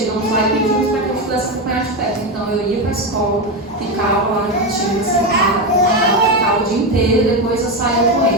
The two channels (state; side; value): normal; both; correlation 0.12